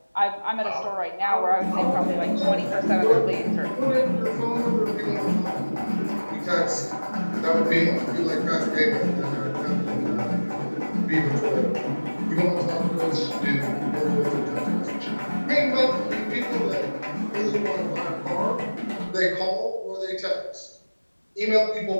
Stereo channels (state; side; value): inverted; both; correlation -1.00